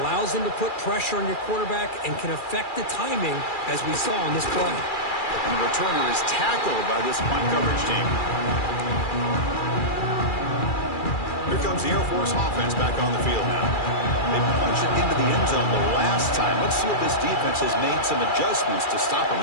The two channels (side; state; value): right; late; 2.4 ms